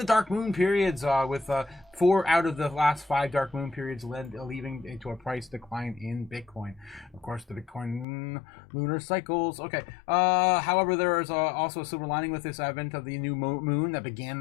dark moon periods, with 4 out of the last 5 dark moon periods leading to a price decline in Bitcoin. Of course, the Bitcoin lunar cycles. Okay. However, there is also a silver lining with this advent of the new moon that began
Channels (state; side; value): drops out; right; at 8.1 s